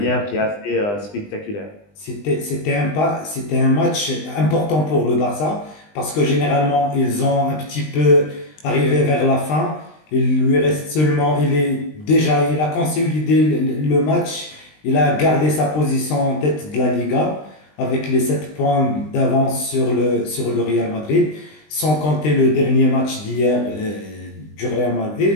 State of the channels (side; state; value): right; late; 20 ms